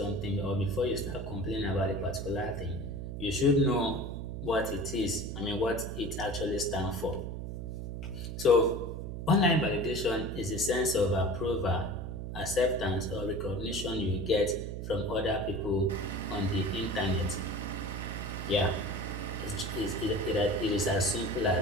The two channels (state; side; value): noise; right; hum, 6 dB below the sound